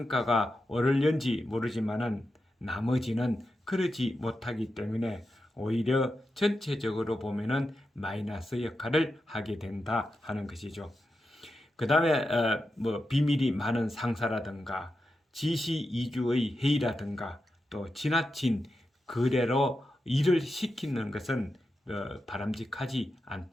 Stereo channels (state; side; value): normal; both; correlation 0.89